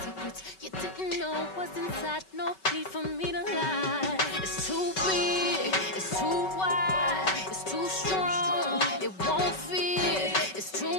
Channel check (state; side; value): late; right; 5.3 ms